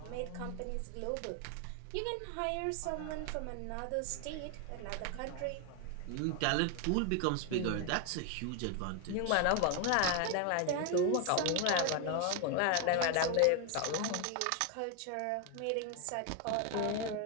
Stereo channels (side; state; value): both; different; correlation 0.01